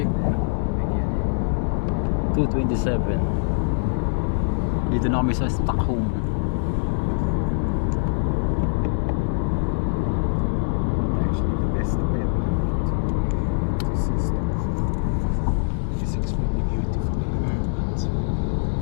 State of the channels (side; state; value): right; silent; digital silence